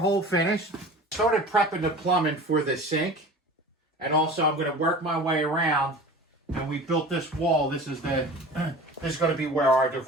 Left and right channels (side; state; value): both; normal; correlation 0.38